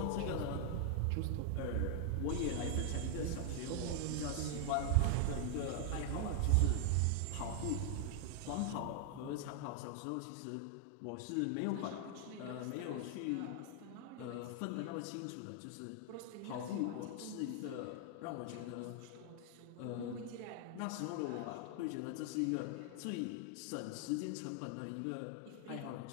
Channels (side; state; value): both; different; correlation 0.00